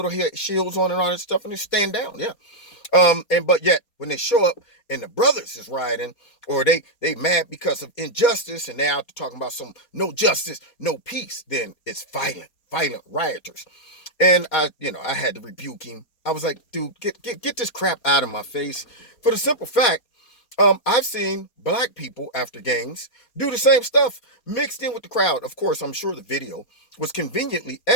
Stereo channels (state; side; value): late; right; 4.3 ms